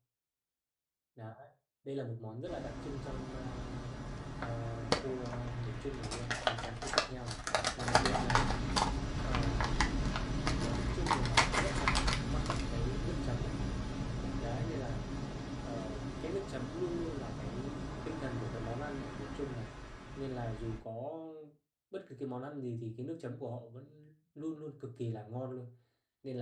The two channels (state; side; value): identical; both; correlation 1.00